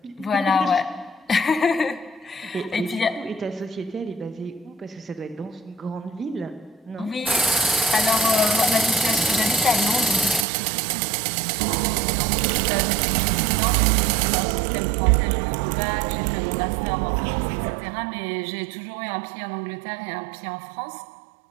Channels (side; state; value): left; drops out; at 10.5 s